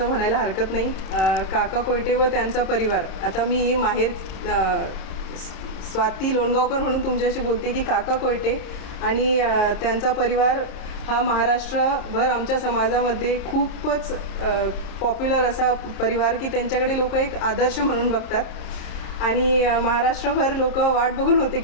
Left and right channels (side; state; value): right; late; 29 ms